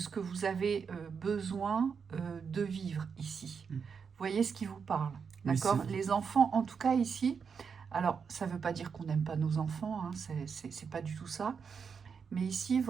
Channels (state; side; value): quieter; left; 6.1 dB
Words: que vous avez besoin de vivre ici. Vous voyez ce qui vous parle. D'accord ? Oui, les enfants, en tout cas ici, alors ça ne veut pas dire qu'on n'aime pas nos enfants, hein, c'est pas du tout ça, mais ici,